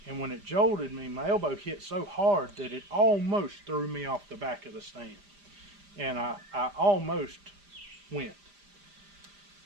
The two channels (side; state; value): left; late; 5.0 ms